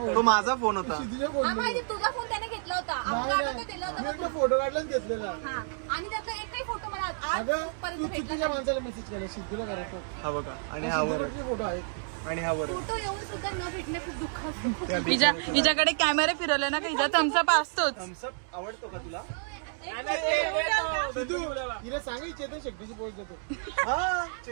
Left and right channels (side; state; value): left; silent; digital silence